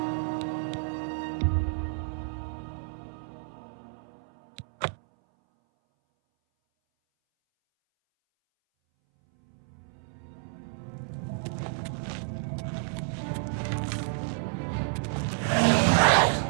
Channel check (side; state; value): left; silent; 58 dB below the other